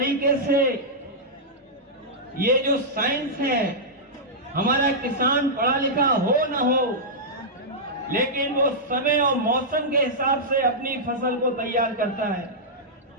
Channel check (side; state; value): both; normal; correlation -0.11